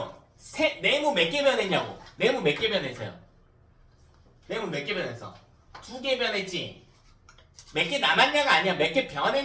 네모 몇 개 변했냐고. 네모 몇 개 변했어요? 네모 몇 개 변했어? 2개 변했지. 몇 개 남았냐가 아니야. 몇 개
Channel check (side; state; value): both; identical; correlation 1.00